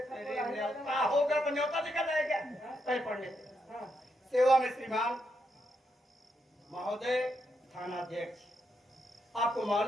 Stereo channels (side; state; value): both; normal; correlation 0.81